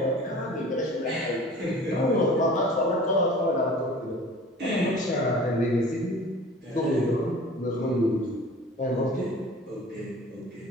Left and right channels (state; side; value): normal; both; correlation 0.43